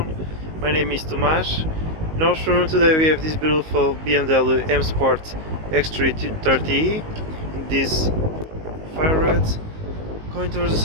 My name is Tomas. In our showroom today we have this beautiful BMW M Sport X330e in this fire red. Going towards the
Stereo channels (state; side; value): late; left; 19 ms